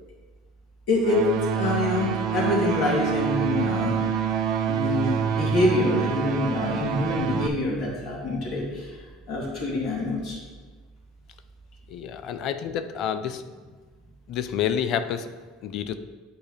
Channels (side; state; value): both; normal; correlation 0.44